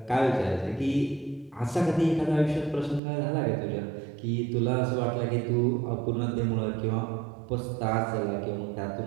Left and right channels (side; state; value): left; drops out; at 3.0 s